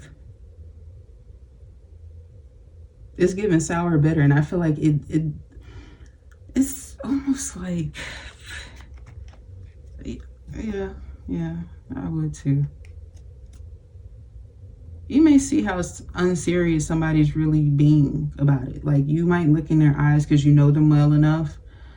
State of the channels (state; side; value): identical; both; correlation 1.00